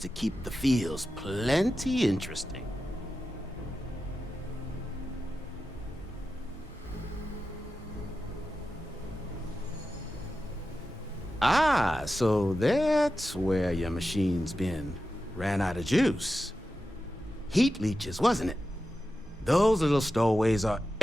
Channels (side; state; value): both; normal; correlation 0.92